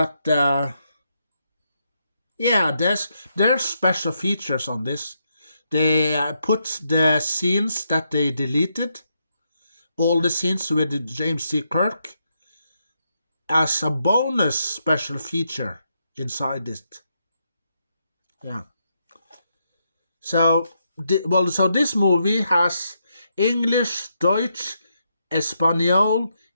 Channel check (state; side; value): inverted; both; correlation -0.80